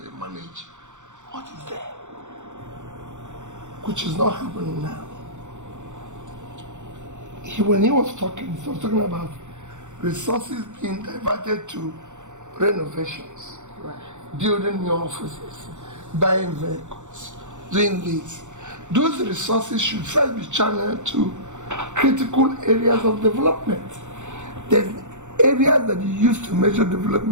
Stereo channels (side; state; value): left; late; 0.85 ms